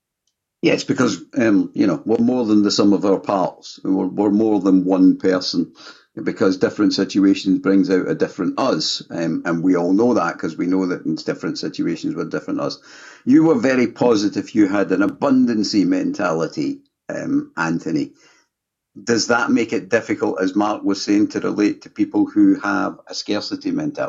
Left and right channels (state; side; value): identical; both; correlation 1.00